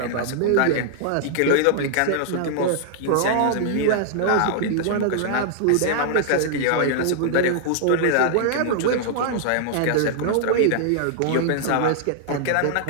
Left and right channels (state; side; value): different; both; correlation -0.01